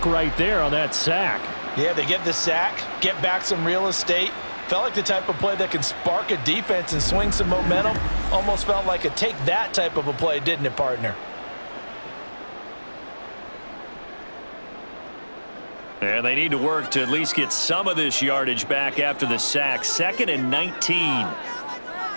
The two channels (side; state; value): both; inverted; correlation -1.00